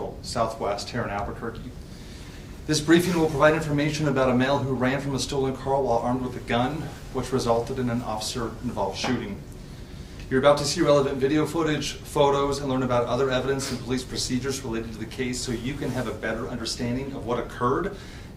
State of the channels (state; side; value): identical; both; correlation 1.00